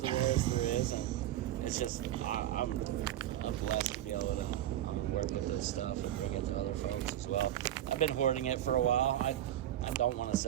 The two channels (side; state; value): left; quieter; 12.4 dB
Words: rarest there is, and it's just I'm blessed to be able to work with this stuff and bring it to other folks as well. I've been hoarding it for a while. I don't want to